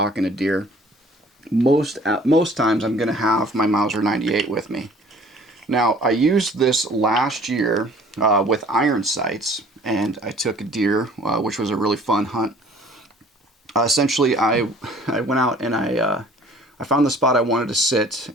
a deer, most times I'm going to have my Mauser 98 with me. Now, I used this last year with iron sights, and I took a deer, which was a really fun hunt. Essentially, I went out and I found the spot I wanted to sit,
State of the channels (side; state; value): both; normal; correlation 0.53